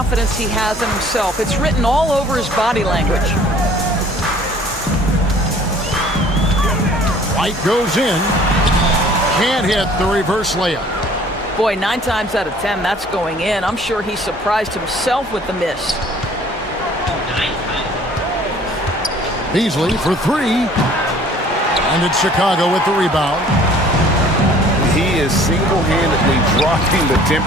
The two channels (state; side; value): normal; both; correlation 0.53